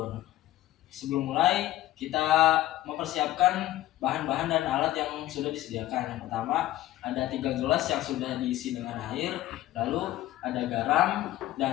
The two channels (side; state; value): right; quieter; 14.9 dB